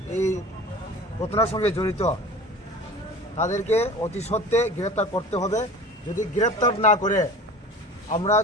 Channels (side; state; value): both; normal; correlation 0.39